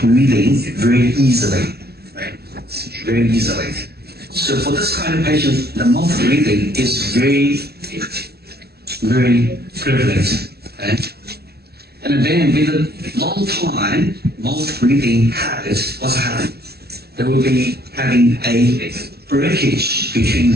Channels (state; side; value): late; left; 0.46 ms